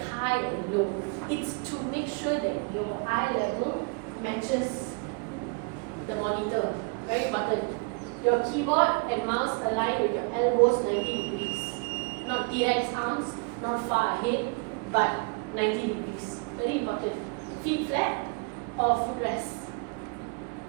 high and low? It's to make sure that your eye level matches the monitor. Very important. Your keyboard and mouse align with your elbows 90 degrees. Not T-Rex arms, not far ahead, but 90 degrees. Very important. Feet flat or footrest.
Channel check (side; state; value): left; quieter; 32.1 dB